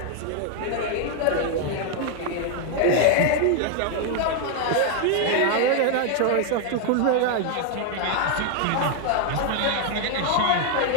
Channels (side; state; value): both; different; correlation 0.00